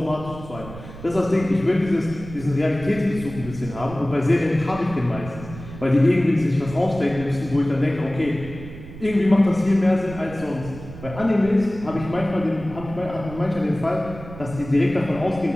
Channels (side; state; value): right; noise; rumble, 14 dB below the sound